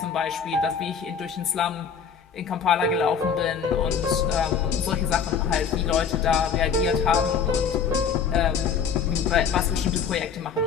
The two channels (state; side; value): quieter; right; 6.7 dB